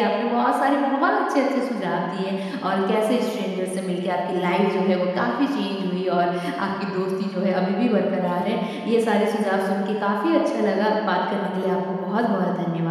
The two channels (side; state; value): both; identical; correlation 1.00